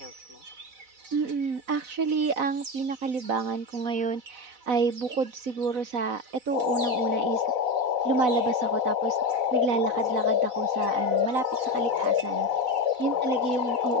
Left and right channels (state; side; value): late; left; 4.0 ms